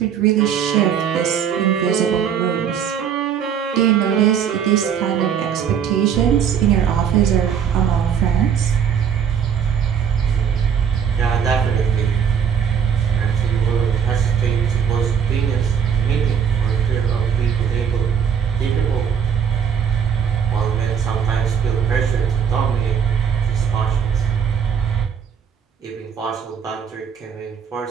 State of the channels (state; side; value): quieter; left; 7.7 dB